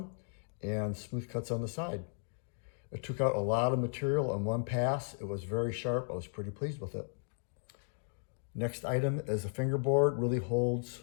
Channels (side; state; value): right; silent; 54 dB below the other